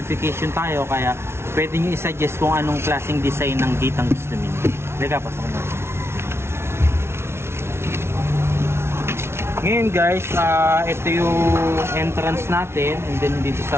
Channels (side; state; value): left; late; 0.12 ms